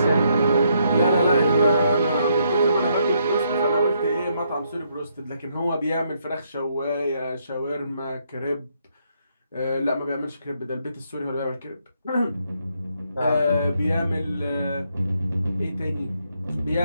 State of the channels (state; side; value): inverted; both; correlation -0.74